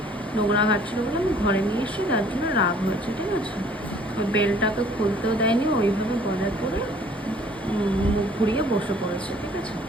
নোংরা ঘাটছিল বলে আমি ঘরে নিয়ে এসেছি, তার জন্য রাগ হয়েছে, ঠিক আছে। ওই বেলটাকে খুলতেও দেয়নি, ওইভাবে গলায় পরে মুখ ঘুরিয়ে বসে পড়েছে, ঠিক আছে।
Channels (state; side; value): normal; both; correlation 0.56